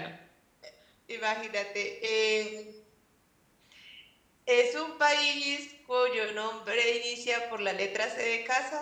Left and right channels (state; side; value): identical; both; correlation 1.00